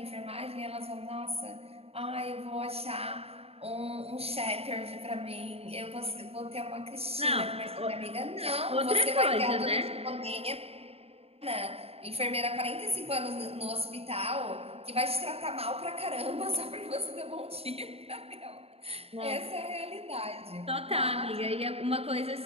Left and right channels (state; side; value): late; left; 0.29 ms